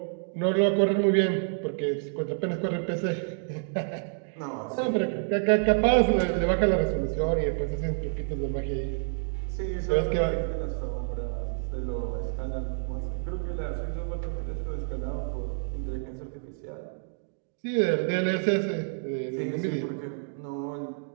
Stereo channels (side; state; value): left; silent; digital silence